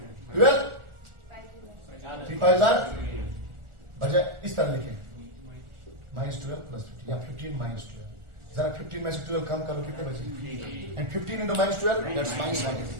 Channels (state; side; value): late; left; 1.4 ms